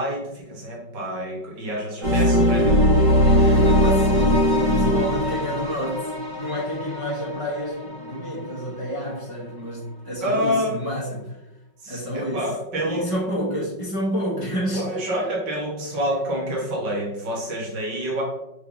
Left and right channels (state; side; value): late; left; 5.4 ms